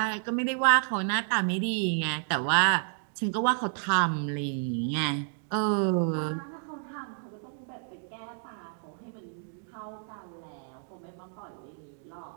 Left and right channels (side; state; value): left; silent; digital silence